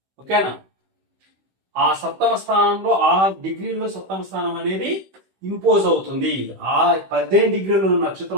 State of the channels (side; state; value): left; late; 16 ms